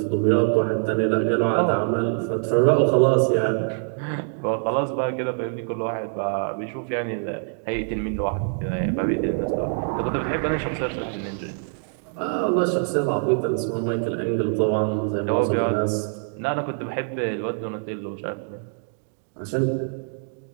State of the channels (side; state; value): left; silent; 58 dB below the other